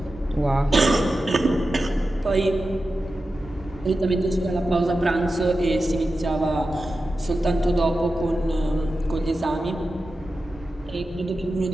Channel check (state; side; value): normal; both; correlation 0.92